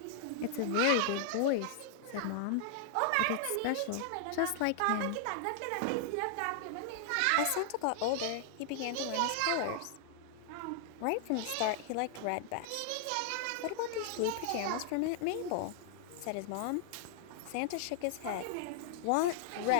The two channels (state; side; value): different; both; correlation -0.01